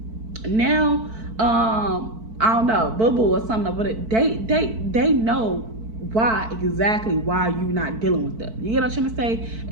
Now, I don't know, Boo Boo or something, but they know exactly why you're not dealing with them. You get what I'm trying to say?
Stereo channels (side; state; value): left; late; 4.5 ms